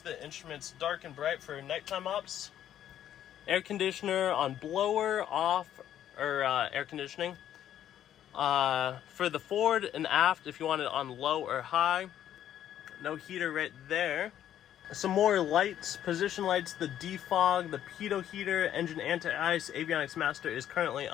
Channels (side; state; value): right; quieter; 10.9 dB